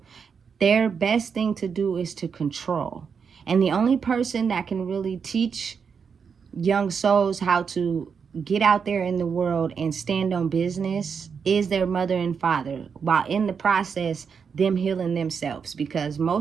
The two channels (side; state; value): left; quieter; 6.3 dB